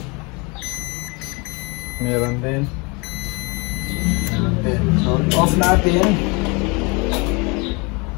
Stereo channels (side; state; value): right; quieter; 29.2 dB